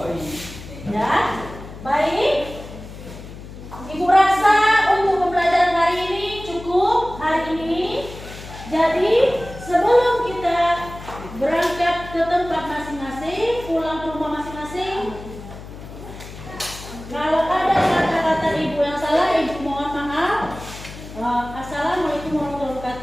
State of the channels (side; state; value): left; noise; hum, 14 dB below the sound